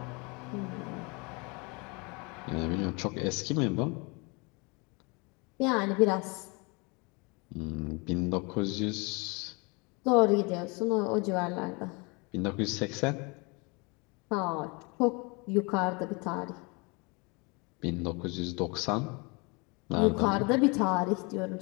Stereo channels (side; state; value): right; quieter; 29.4 dB